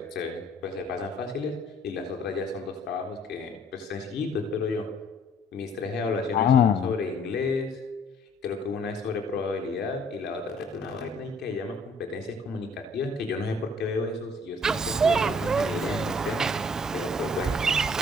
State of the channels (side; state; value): both; normal; correlation 0.59